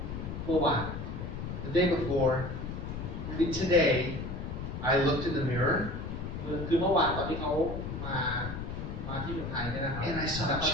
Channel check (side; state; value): left; noise; rumble, 6 dB below the sound